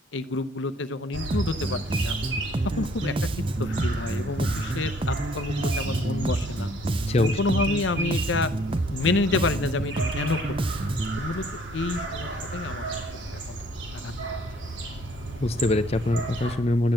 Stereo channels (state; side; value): normal; both; correlation 0.61